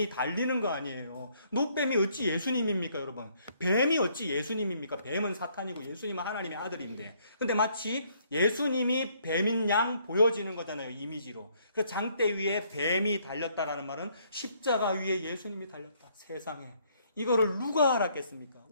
달리는 거 아니에요. 놋뱀이 어찌 예수님입니까, 여러분? 뱀이 어찌 예수님입니까? 뱀은 사탄이고 예수님은 하나님의 아들인데. 근데 마치 예수님이 뱀인 양 보여지는 거잖아요, 이미지로. 그 장대 위에 뱀이 달렸다라는 말은 십자가 위에 예수님이 달렸다. 세상에. 이거를 누가 알았겠습니까?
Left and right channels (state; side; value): inverted; both; correlation -0.67